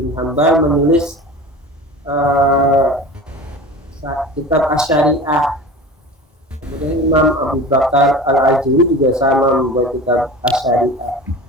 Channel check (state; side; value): normal; both; correlation 0.35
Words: Hanbal menulis kitab Asy-Syariah. Kemudian Imam Abu Bakar Al-Ajuri juga sama membuat kitab Asy-Syariah.